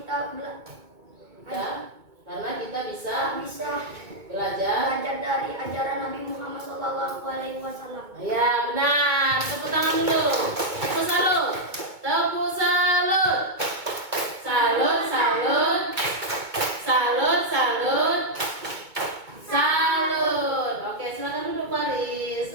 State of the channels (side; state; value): left; late; 2.2 ms